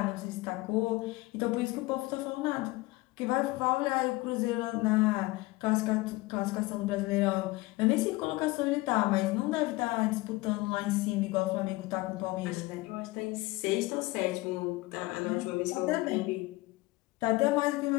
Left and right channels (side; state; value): right; quieter; 21.4 dB